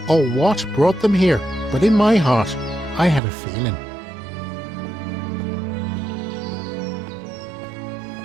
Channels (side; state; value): left; drops out; at 3.2 s